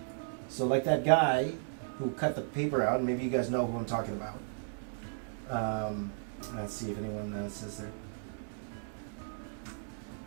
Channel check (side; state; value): left; silent; digital silence